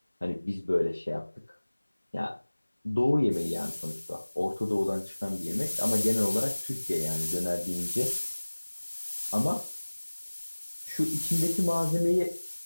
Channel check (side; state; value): both; inverted; correlation -1.00